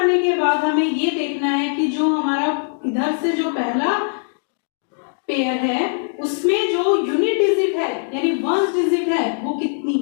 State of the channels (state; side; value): silent; right; digital silence